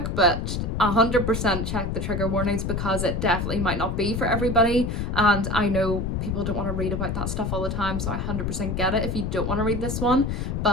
but 100% check the trigger warnings because it definitely might not be for everybody. And I know people don't want to read about that stuff all the time, so I 100% get it if you don't want to read this one.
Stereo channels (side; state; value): left; noise; rumble, 2 dB below the sound